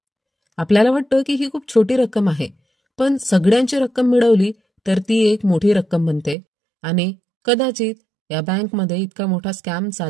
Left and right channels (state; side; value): drops out; left; at 6.4 s